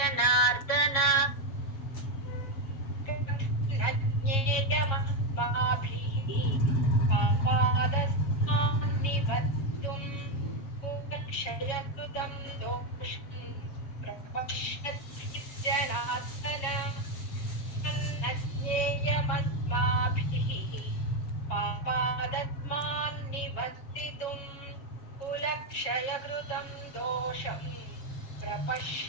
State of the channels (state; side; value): late; right; 7.4 ms